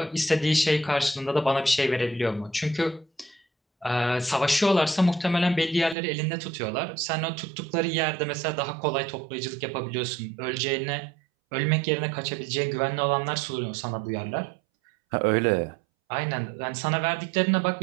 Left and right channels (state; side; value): drops out; left; at 6.0 s